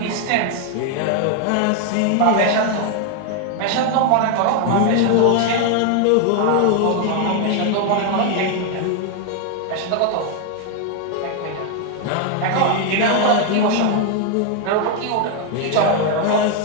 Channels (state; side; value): different; both; correlation 0.01